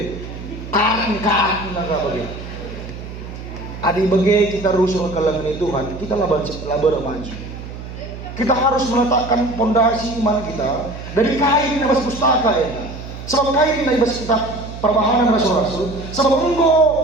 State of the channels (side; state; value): right; noise; hum, 11 dB below the sound